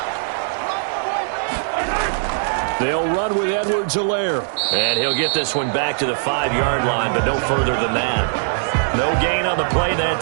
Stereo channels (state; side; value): silent; left; digital silence